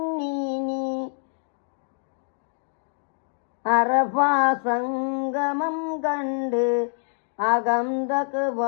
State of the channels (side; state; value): right; silent; 61 dB below the other